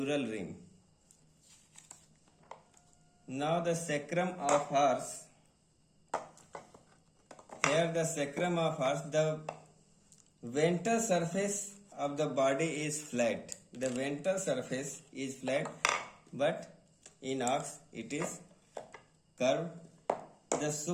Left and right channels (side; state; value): both; identical; correlation 1.00